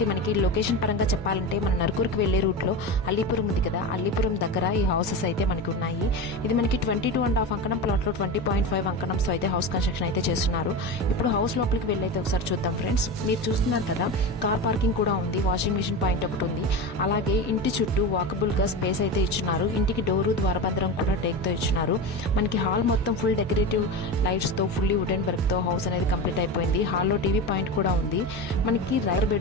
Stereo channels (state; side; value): normal; both; correlation 0.23